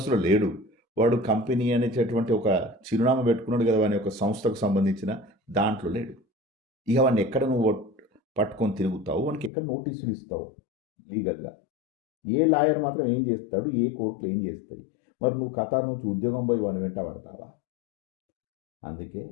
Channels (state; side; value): drops out; right; at 9.5 s